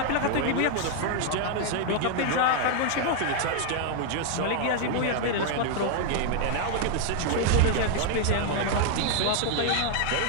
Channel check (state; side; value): different; both; correlation 0.00